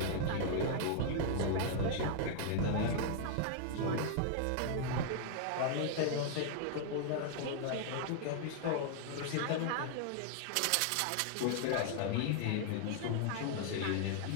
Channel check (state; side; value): different; both; correlation 0.00